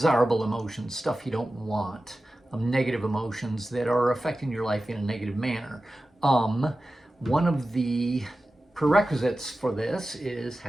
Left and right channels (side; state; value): both; normal; correlation 0.94